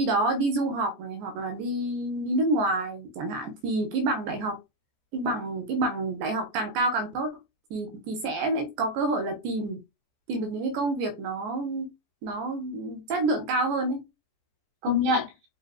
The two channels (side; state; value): left; late; 14 ms